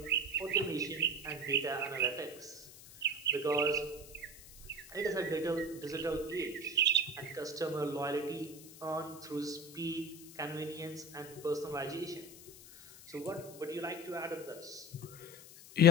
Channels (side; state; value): left; noise; hiss, 18 dB below the sound